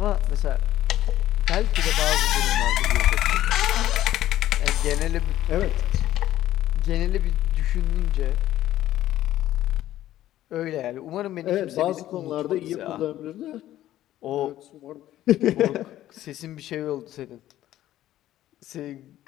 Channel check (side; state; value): right; quieter; 13.5 dB